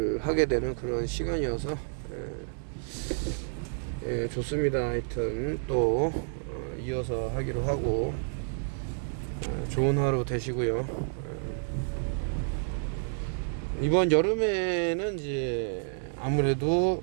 하게 되는 그런 시간이어서 좋습니다. 하여튼 또 이어서 하기로 하고 좋은 하루 되시고요. 이번 여름에는 이제 아무래도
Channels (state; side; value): silent; left; digital silence